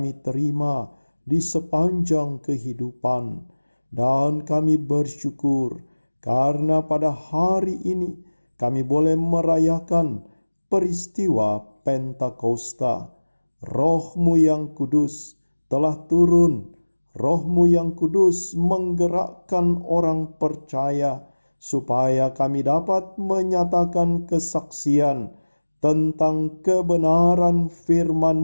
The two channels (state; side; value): inverted; both; correlation -1.00